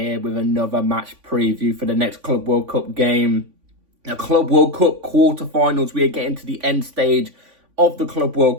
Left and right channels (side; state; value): left; late; 3.5 ms